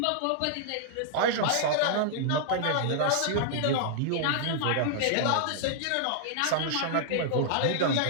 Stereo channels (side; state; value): both; different; correlation -0.01